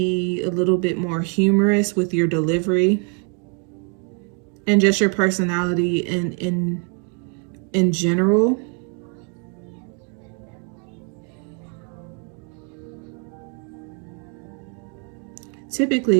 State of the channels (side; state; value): left; quieter; 38.8 dB